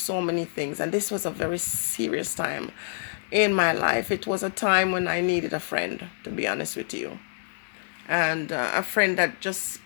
many things, and this was a very serious time in my life. It was a time when I needed a friend, to be honest with you, and a friend that just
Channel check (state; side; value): silent; right; digital silence